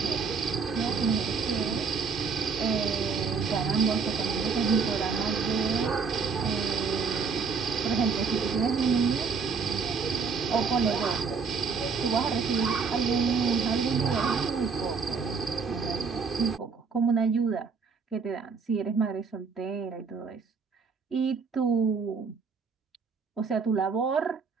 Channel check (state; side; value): quieter; left; 5.3 dB